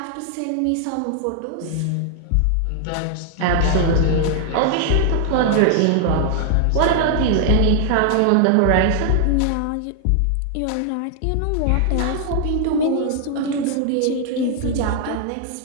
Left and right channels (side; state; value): both; different; correlation 0.00